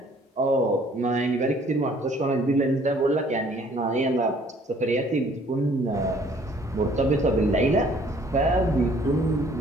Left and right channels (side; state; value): both; normal; correlation 0.58